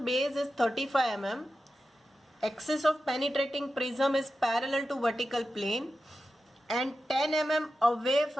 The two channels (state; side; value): normal; both; correlation 0.92